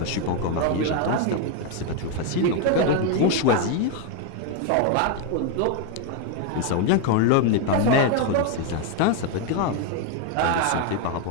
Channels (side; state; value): both; different; correlation 0.01